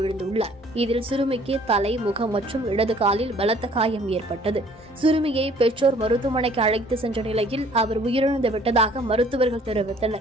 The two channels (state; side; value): normal; both; correlation 0.56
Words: இதில் சிறுமிக்கு தலை, முகம் மற்றும் இடது காலில் பலத்த காயம் ஏற்பட்டது. சிறுமியை பெற்றோர் மருத்துவமனைக்கு அழைத்து சென்ற நிலையில் அவர் உயிரிழந்து விட்டதாக மருத்துவர்கள்